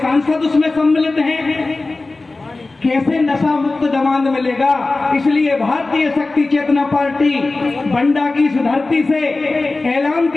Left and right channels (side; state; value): right; quieter; 3.3 dB